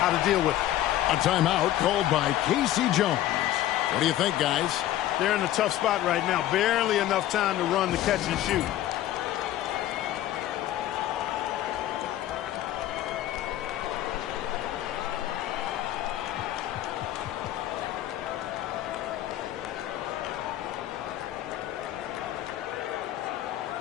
to deal with it. A timeout called by Casey Jones. What do you think, guys? They're in a tough spot right now. Barely enough time to run the catch and shoot.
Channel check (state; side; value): quieter; right; 13.4 dB